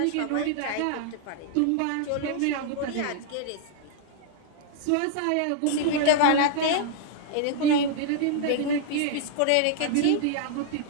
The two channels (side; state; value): both; different; correlation -0.01